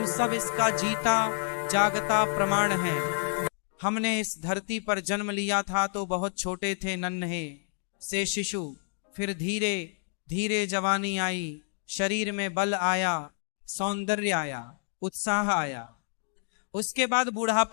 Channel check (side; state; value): right; silent; digital silence